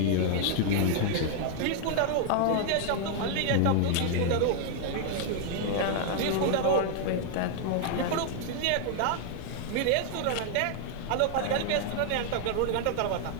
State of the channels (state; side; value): different; both; correlation 0.00